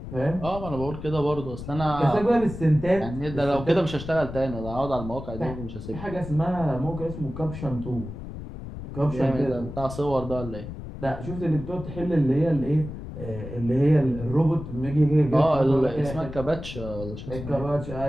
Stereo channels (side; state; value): left; noise; rumble, 10 dB below the sound